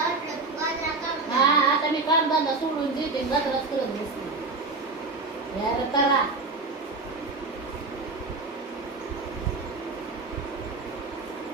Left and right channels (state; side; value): quieter; left; 3.7 dB